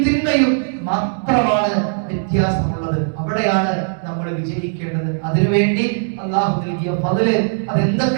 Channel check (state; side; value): silent; left; digital silence